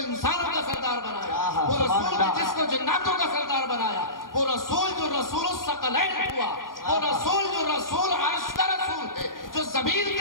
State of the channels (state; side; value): late; right; 0.91 ms